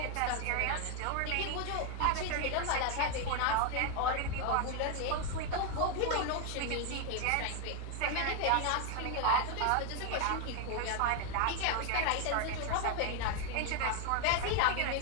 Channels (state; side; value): different; both; correlation 0.01